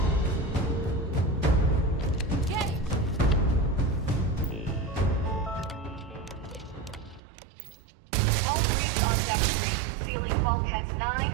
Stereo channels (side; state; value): left; drops out; at 7.2 s